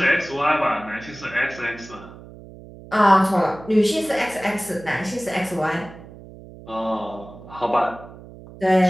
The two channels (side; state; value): right; noise; hum, 18 dB below the sound